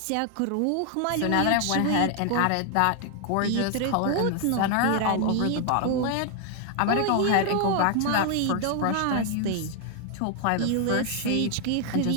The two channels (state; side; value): different; both; correlation 0.00